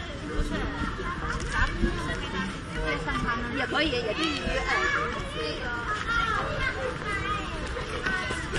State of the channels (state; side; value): identical; both; correlation 1.00